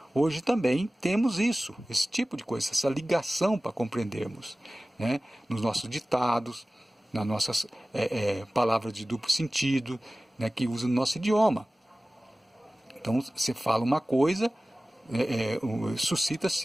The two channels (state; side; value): normal; both; correlation 0.97